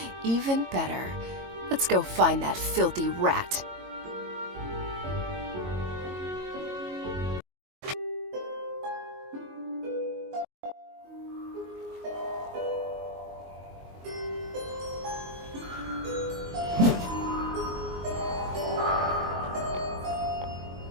Even better. Let's go find that filthy rat.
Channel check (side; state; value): left; late; 22 ms